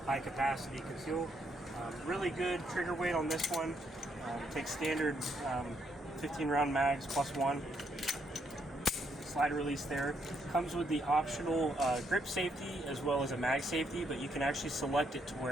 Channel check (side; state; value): both; normal; correlation 0.75